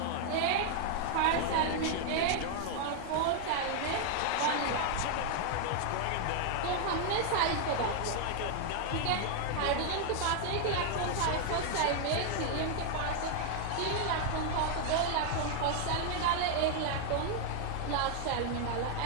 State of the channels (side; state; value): both; different; correlation 0.00